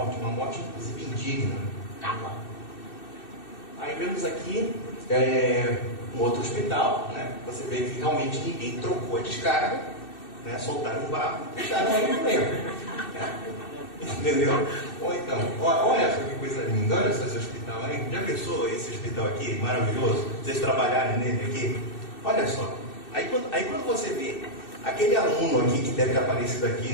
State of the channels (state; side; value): late; right; 2.6 ms